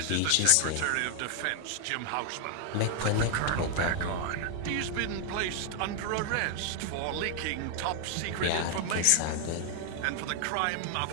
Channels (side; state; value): both; different; correlation 0.00